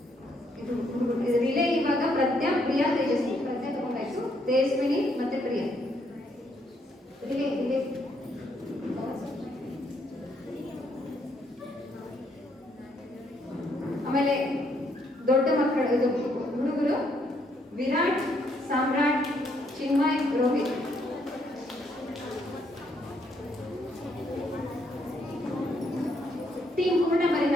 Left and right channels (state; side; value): normal; both; correlation 0.72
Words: ರಿಲೇ ಇವಾಗ ಪ್ರಜ್ಞಾ, ಪ್ರಿಯಾ, ತೇಜಸ್ವಿನಿ. ಪ್ರಜ್ಞಾ ತಗೊಂಡಾಯ್ತು, ತೇಜಸ್ವಿನಿ ಮತ್ತೆ ಪ್ರಿಯಾ. ರಿಲೇ ಆಮೇಲೆ ದೊಡ್ಡ ಮಕ್ಕಳು ಹುಡುಗರು ವಿರಾಟ್, ಸಾಮ್ರಾಟ್, ಚಿನ್ಮಯ್, ರೋಹಿತ್. ಟೀಮ್ ಪೂರ್ಣ ಬರೀ